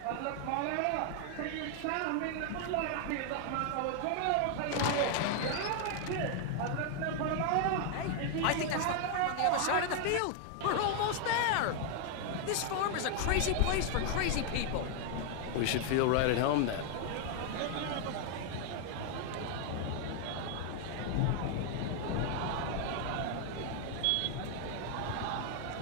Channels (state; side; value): different; both; correlation 0.00